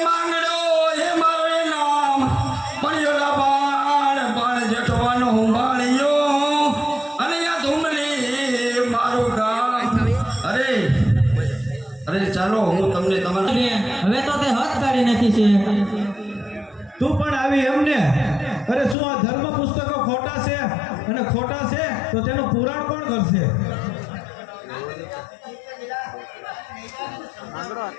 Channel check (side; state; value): right; drops out; at 18.9 s